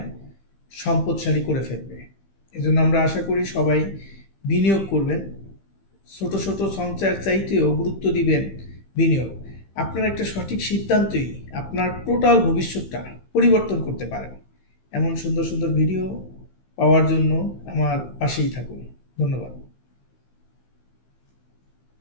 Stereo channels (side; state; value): right; late; 15 ms